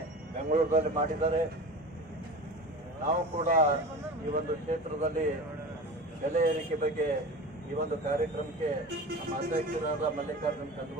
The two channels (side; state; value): both; normal; correlation 0.33